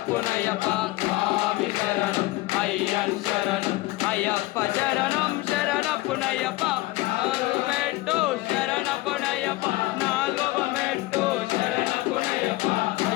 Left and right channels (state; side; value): quieter; right; 19.6 dB